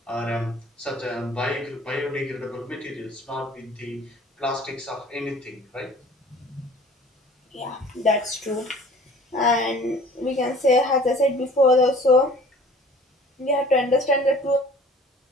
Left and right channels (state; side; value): normal; both; correlation 0.49